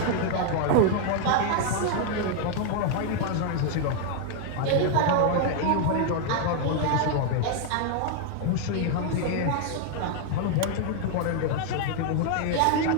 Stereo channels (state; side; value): different; both; correlation 0.00